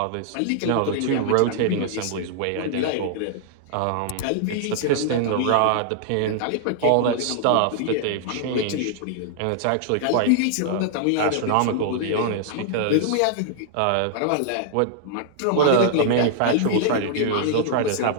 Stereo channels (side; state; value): both; different; correlation -0.01